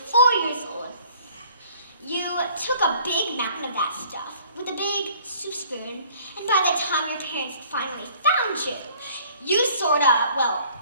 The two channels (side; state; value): both; inverted; correlation -0.56